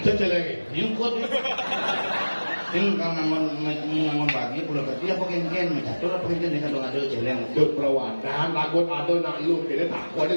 Ini kuat nih. Ini kalau ngamun bagi pulau kecil apa ken mencatur apa ken nih kalau ada celeng. Berperawanan, lagun ada nak lu kini tak kuat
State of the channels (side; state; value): both; inverted; correlation -1.00